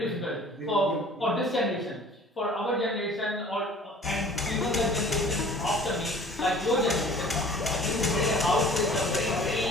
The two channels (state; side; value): normal; both; correlation 0.48